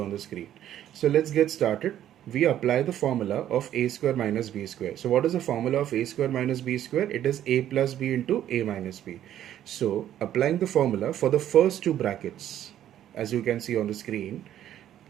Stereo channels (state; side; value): quieter; left; 11.5 dB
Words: the screen. So let's get started. We apply the formula of a square minus b square. So what is the formula of a square minus b square? It is a plus b into a minus b. So applying the formula for the first two brackets, as you can see on the screen,